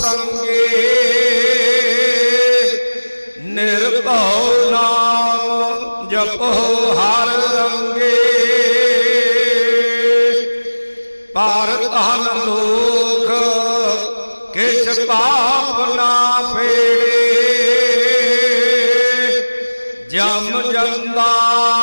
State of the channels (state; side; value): inverted; both; correlation -1.00